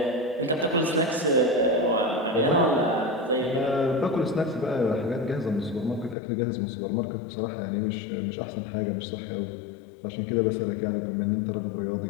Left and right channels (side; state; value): right; drops out; at 6.2 s